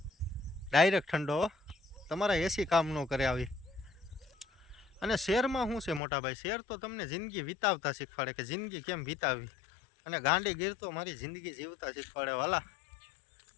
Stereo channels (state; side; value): drops out; right; at 6.0 s